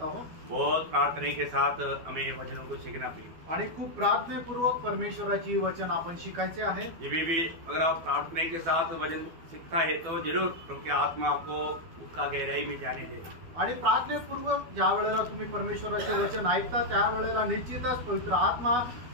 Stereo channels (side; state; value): left; late; 12 ms